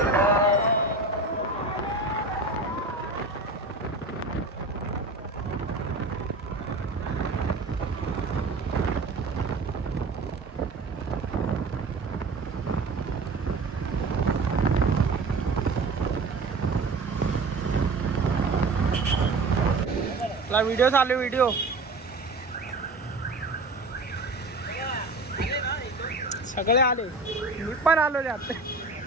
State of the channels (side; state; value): left; quieter; 3.4 dB